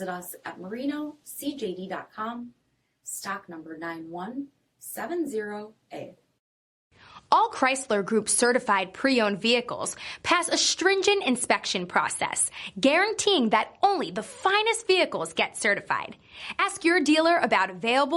us at marinocjd.com, stock number 9170A. All Chrysler Group certified pre-owned vehicles pass a stringent inspection process, guaranteeing that only the finest vehicles get certified. Ask your dealer about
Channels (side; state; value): both; identical; correlation 1.00